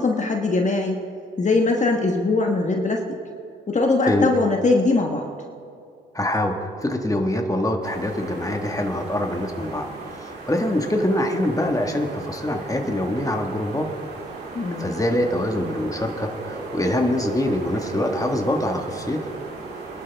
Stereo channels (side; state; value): both; normal; correlation 0.71